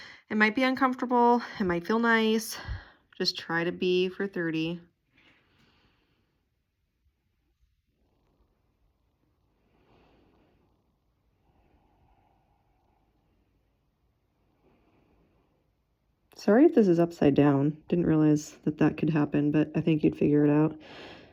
It might be uncomfortable, it might feel nice. Just try to be for 30. Sorry if this is upside down. Didn't realize that that could happen, but I think you'd figure it out.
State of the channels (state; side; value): identical; both; correlation 1.00